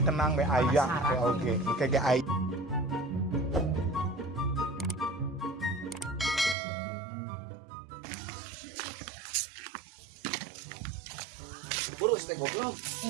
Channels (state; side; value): drops out; left; at 6.6 s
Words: tenang be aya teh oge. Kayak aya. Burus teh goblok.